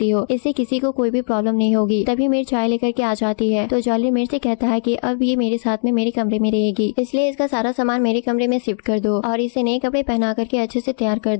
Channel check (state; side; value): silent; right; digital silence